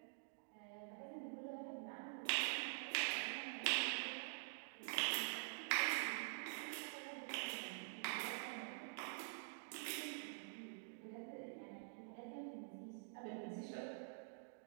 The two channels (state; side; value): silent; left; digital silence